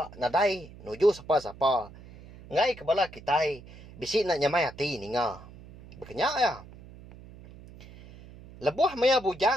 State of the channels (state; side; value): noise; right; hum, 19 dB below the sound